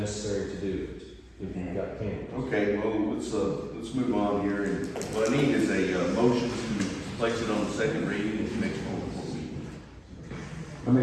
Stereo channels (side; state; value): both; identical; correlation 1.00